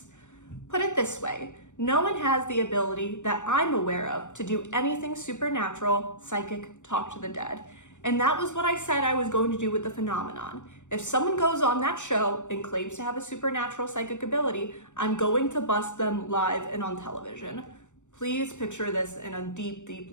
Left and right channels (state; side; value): late; right; 0.85 ms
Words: "Put it this way, no one has the ability that I'm aware of to do anything supernatural, psychic, talk to the dead. And that was what I said I was going to do with the phenomenon. If someone goes on that show and claims to have a supernatural psychic ability, I'm going to bust them live and on television." Please picture this in a deep, deep